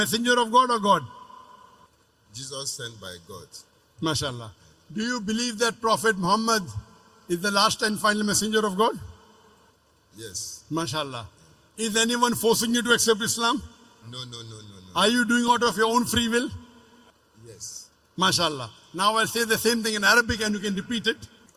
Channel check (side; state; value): both; identical; correlation 1.00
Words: of God or God? Jesus sent by God. Mashallah. Do you believe that Prophet Muhammad is the last and final messenger of God? Yes. Mashallah. Is anyone forcing you to accept Islam? No. Are you doing out of your own free will? Yes. Mashallah. Now I'll say the same thing in Arabic and you can repeat it.